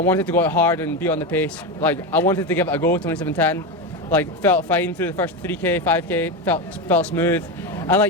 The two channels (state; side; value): normal; both; correlation 0.15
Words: to go out hard and be on the pace. Like I wanted to give it a go, 27:10. Like felt fine through the first 3k, 5k, felt smooth. And